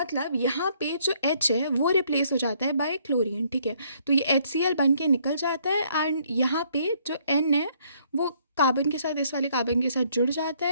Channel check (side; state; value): both; inverted; correlation -0.66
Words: यहाँ पे जो H है वो रिप्लेस हो जाता है बाय क्लोरीन, ठीक है। तो ये HCl बन के निकल जाता है एंड यहाँ पे जो N है वो कार्बन के साथ, इस वाले कार्बन के साथ जुड़ जाता